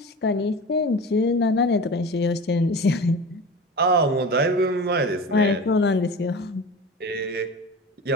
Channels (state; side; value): normal; both; correlation 0.33